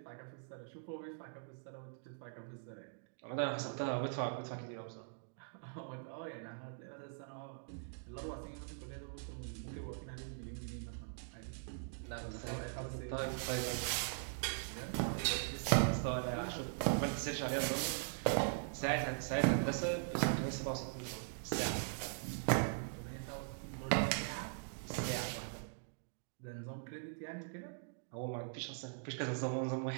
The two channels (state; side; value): silent; left; digital silence